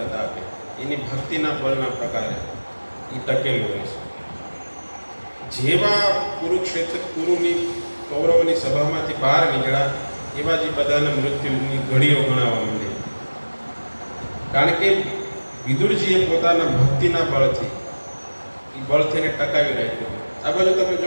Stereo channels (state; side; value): inverted; both; correlation -1.00